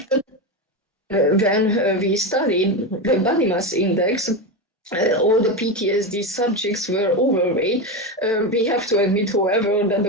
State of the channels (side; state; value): both; normal; correlation 0.15